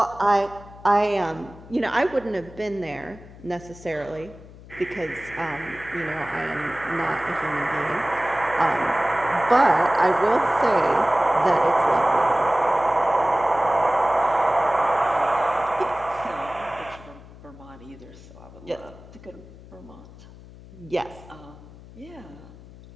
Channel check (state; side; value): noise; left; hum, 19 dB below the sound